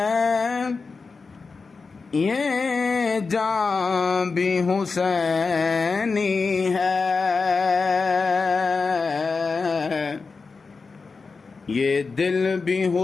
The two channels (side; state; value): right; quieter; 4.5 dB